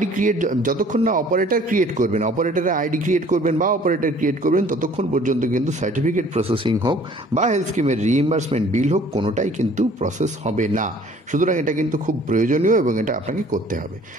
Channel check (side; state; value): both; normal; correlation 0.54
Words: ক্রিয়েট যতক্ষণ না অপারেটর ক্রিয়েট করবেন, অপারেটরের আইডি ক্রিয়েট করবেন বা অপারেটর ক্রিয়েট করবেন, ততক্ষণ পর্যন্ত কিন্তু সার্টিফিকেট প্রসেসিং হোক বা হেলথ স্কিমের রিইম্বার্সমেন্ট বিল হোক, কোনোটাই কিন্তু প্রসেস হবে না। সুতরাং এটা কিন্তু খুব প্রয়োজনীয় এবং এটা আপনাকে করতে হবে।